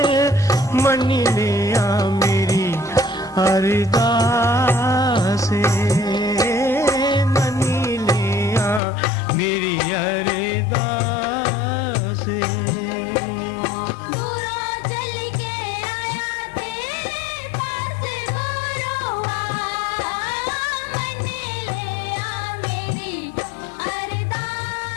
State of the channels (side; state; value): right; drops out; at 8.8 s